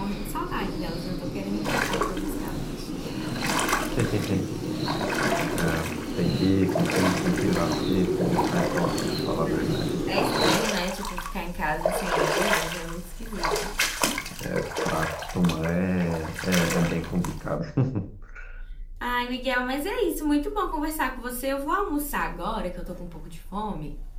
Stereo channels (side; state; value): both; identical; correlation 1.00